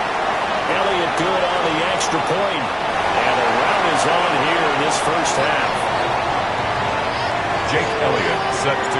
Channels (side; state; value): both; identical; correlation 1.00